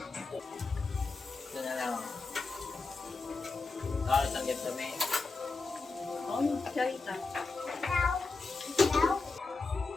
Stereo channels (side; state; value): right; quieter; 3.9 dB